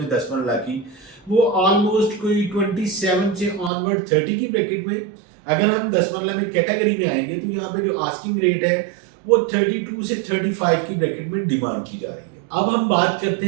10 मरला की वो ऑलमोस्ट कोई 27 से ऑनवर्ड 30 की ब्रैकेट में। अगर हम 10 मरला में कैटेगरी में आएंगे तो यहाँ पे जो आस्किंग रेट है वो 32 से 35 की ब्रैकेट में डिमांड की जा रही है। अब हम बात करते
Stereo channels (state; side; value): drops out; left; at 3.7 s